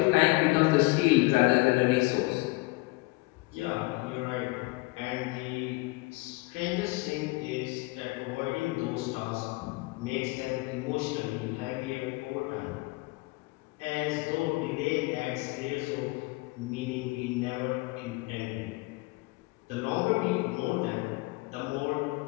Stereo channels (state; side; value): quieter; right; 24.2 dB